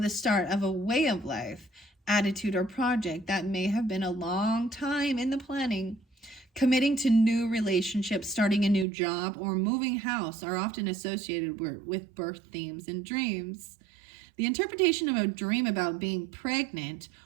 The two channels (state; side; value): drops out; left; at 8.8 s